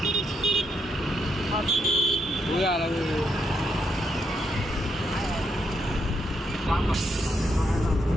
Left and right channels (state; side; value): normal; both; correlation 0.78